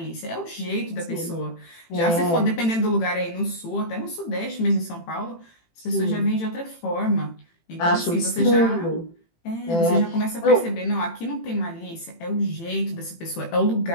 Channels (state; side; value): late; right; 18 ms